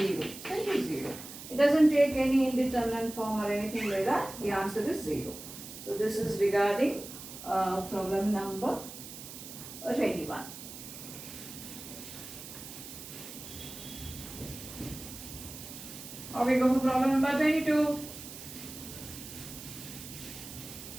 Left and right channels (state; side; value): noise; right; hiss, 12 dB below the sound